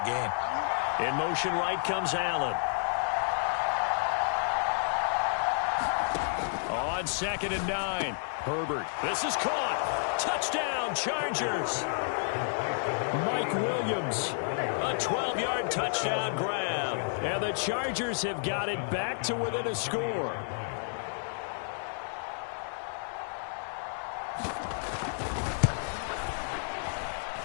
gain. In motion right comes Allen. On 2nd and 9, Herbert. This is caught. Touchdown, Chargers. Mike Williams. A 12-yard touchdown grab. And the Chargers have got it back to within a score.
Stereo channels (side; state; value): right; silent; 57 dB below the other